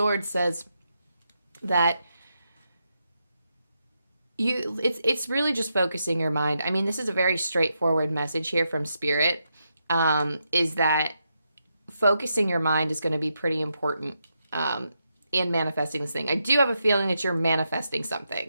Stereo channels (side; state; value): both; inverted; correlation -0.84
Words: says that it's really just focusing your mind. I mean, this is a very straightforward message here from Spirit, is that focusing your mind is going to be pretty important in manifesting this thing. I do have a feeling that you're manifesting